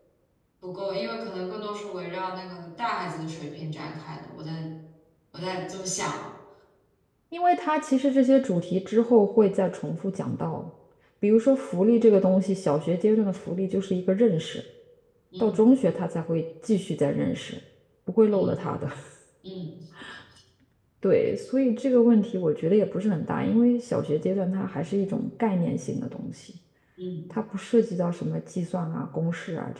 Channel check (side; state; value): both; identical; correlation 1.00